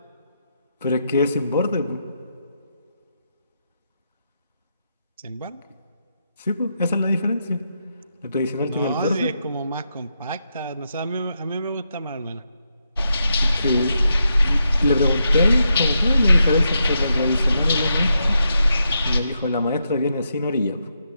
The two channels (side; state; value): both; inverted; correlation -0.83